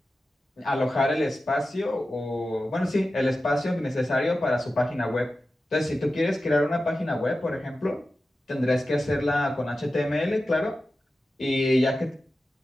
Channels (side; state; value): both; normal; correlation 0.93